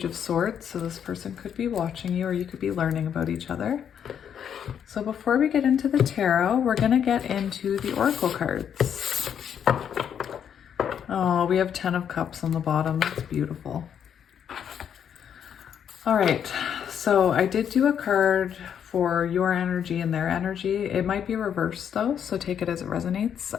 of Swords, so this person could be watching you or you could be learning about each other. So before we get into the tarot, we're going to get into the oracle cards. Oh, we have 10 of Cups on the bottom. That's beautiful. All right, so I did do a card for your energy and their energy. It might be reversed though, so take it as it resonates.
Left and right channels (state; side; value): quieter; right; 8.5 dB